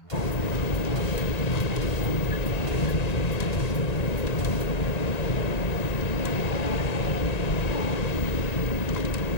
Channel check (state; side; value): late; right; 1.9 ms